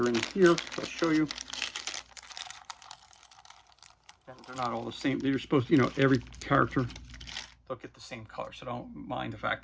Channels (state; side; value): identical; both; correlation 1.00